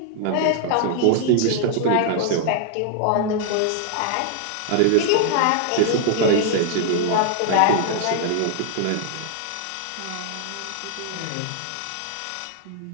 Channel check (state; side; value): different; both; correlation 0.00